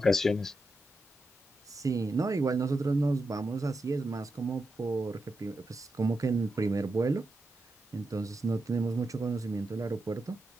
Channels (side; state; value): both; normal; correlation 0.88